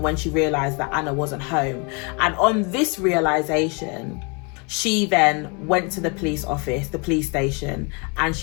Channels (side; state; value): right; quieter; 33.1 dB